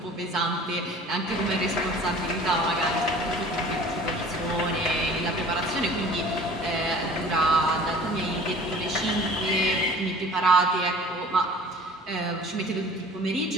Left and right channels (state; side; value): normal; both; correlation 0.47